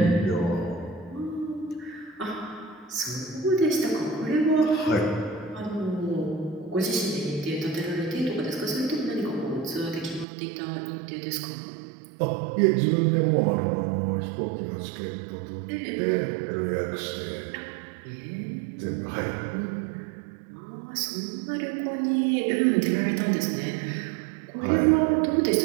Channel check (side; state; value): left; drops out; at 10.2 s